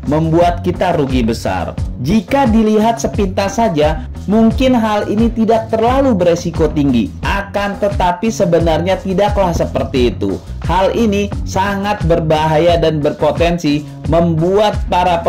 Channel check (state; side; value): identical; both; correlation 1.00